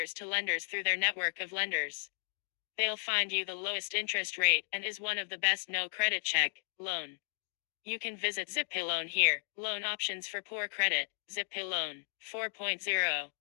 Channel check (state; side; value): silent; right; digital silence